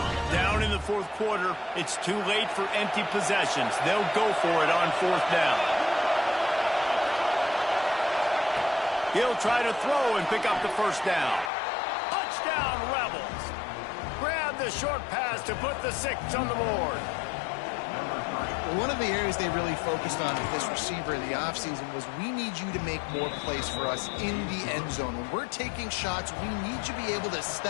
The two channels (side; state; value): right; drops out; at 11.5 s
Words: Down in the 4th quarter, it's too late for empty possessions. They'll go for it on 4th down. He'll try to throw and pick up the 1st down. Touchdown, Rebels. Grab the short pass to put the 6 on the board. Well, one of the areas they really focused on with this receiver in the offseason was we need you to make more plays for us in the end zone. When we're taking shots, we need you to be able to